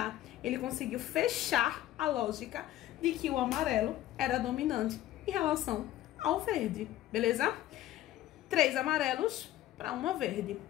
ele conseguiu fechar a lógica de que o amarelo era dominante em relação ao verde, beleza? 3 amarelos para uma verde.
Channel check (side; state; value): right; quieter; 13.9 dB